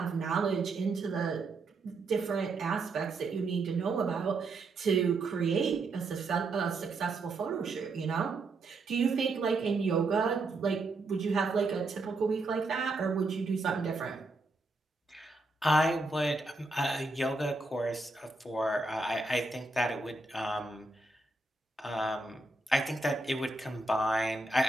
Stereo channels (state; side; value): quieter; left; 3.2 dB